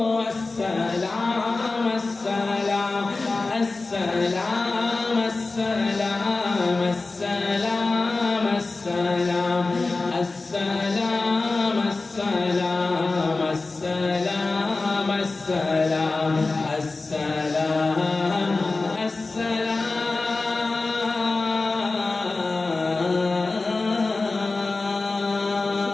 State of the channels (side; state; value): right; quieter; 3.5 dB